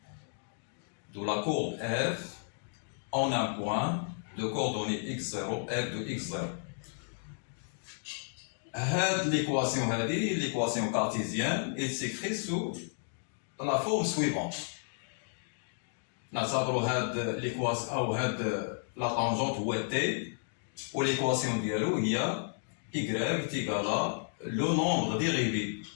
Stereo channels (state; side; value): silent; right; digital silence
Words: de la courbe f en un point de coordonnées x0, f de x0. L'équation cartésienne, elle s'écrit sous la forme suivante. Nous avons la tangente ou t, ou l'équation dialogue, il y a y est égal à le nombre dérivé